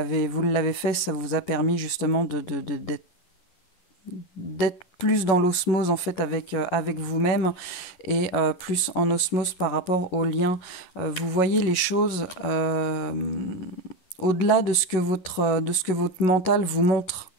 fait, ça vous a permis justement d'être plus dans l'osmose en fait avec vous-même et plus en osmose par rapport aux liens. Vous voyez les choses au-delà de ce que votre mental vous montre.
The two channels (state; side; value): late; right; 11 ms